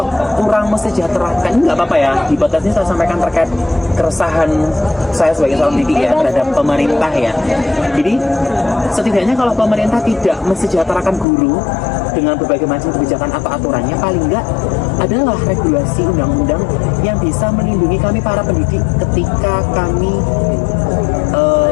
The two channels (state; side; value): drops out; right; at 11.2 s